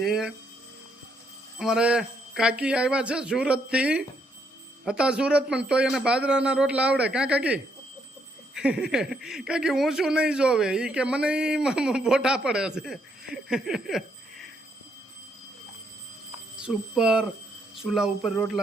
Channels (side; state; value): both; normal; correlation 0.74